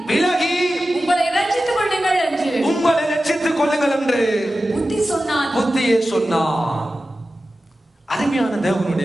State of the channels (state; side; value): normal; both; correlation 0.94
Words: விலகி உங்களை ரட்சித்துக் கொள்ளுங்கள் என்று புத்தியே சொன்னான். அருமையான